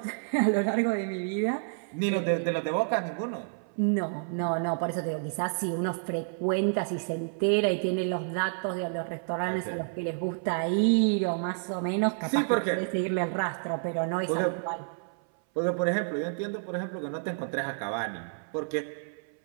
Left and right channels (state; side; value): silent; left; 58 dB below the other